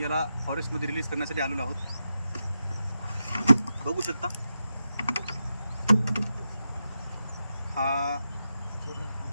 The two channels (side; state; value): both; inverted; correlation -0.88